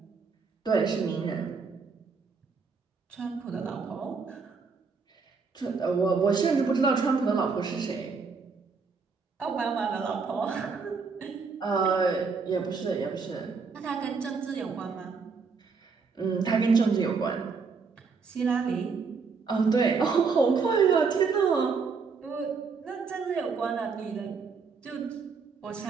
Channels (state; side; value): quieter; left; 5.0 dB